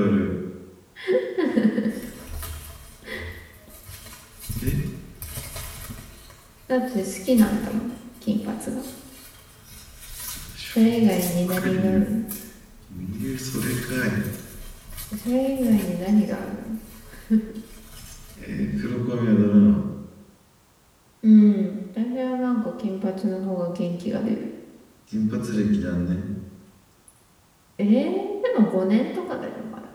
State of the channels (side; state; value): both; identical; correlation 1.00